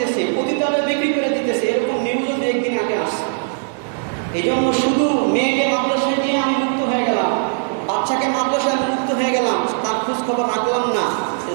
পতিতালয়ে বিক্রি করে দিতেছে। এরকম নিউজও একদিন আগে আসছে। এই জন্য শুধু মেয়েকে মাদ্রাসায় দিয়ে আমি মুক্ত হয়ে গেলাম, বাচ্চাকে মাদ্রাসায় মুক্ত হয়ে গেলাম, তার খোঁজ খবর রাখলাম না,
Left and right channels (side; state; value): left; silent; digital silence